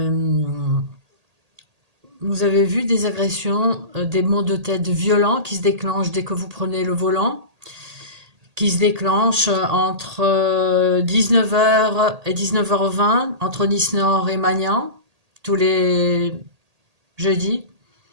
vous avez vu des agressions, des maux de tête violents qui se déclenchent dès que vous prenez le volant, qui se déclenchent entre 19h et 19h20, entre Nice-Nord et Magnan, tous les jeudis,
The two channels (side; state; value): left; late; 1.8 ms